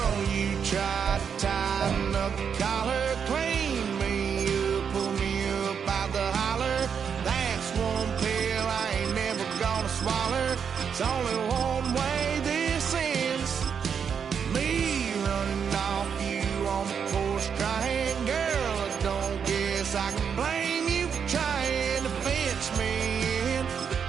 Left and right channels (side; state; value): left; quieter; 7.0 dB